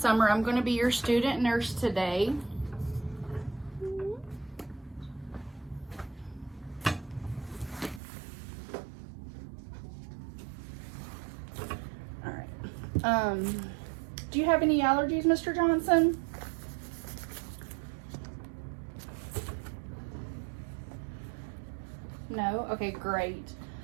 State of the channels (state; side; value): drops out; left; at 8.0 s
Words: I'm going to be your student nurse today. All right. Do you have any allergies, Mr. Johnson? No? Okay, great.